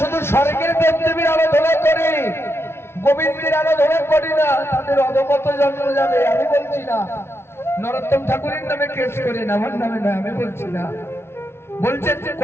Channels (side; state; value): right; late; 0.12 ms